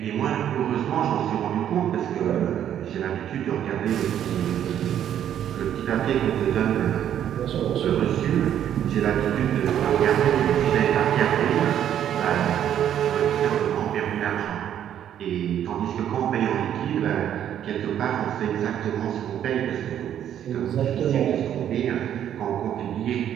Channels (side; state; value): left; quieter; 10.2 dB